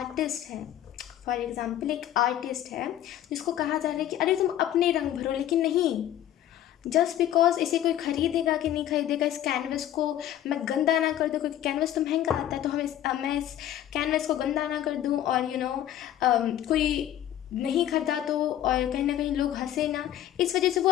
है, फॉर एग्जाम्पल एक आर्टिस्ट है जिसको कहा जा रहा है कि अरे तुम अपने रंग भरो, लेकिन नहीं, जस्ट बिकॉज इसे कोई खरीदेगा कि नहीं खरीदेगा, इस कैनवस को मैं गंदा ना कर दूँ, क्योंकि कैनवस तो महंगा आता है, तो मैं इस कैनवस को गंदा ना कर दूँ और कोई नहीं खरीदा तो और कहीं ना कहीं लोग हंसे ना, इस वजह से वो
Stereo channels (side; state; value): right; quieter; 12.0 dB